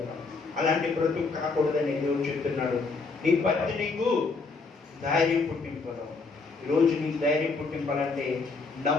అలాంటి బ్రతుకు కాకూడదని దేవుడు చెప్తున్నాడు. నీ భక్తి నీకు ధైర్యం పుట్టింపడం. ఈరోజు నీకు ధైర్యం పుట్టింపాలంటే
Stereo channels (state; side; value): quieter; right; 4.2 dB